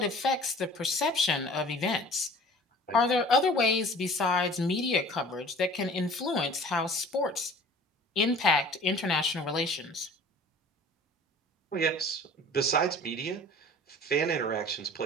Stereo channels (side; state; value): both; normal; correlation 0.46